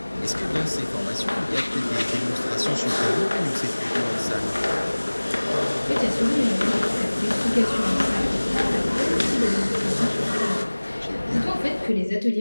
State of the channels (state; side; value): inverted; both; correlation -1.00